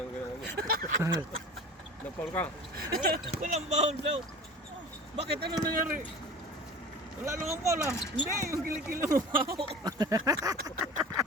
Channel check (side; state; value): both; normal; correlation 0.38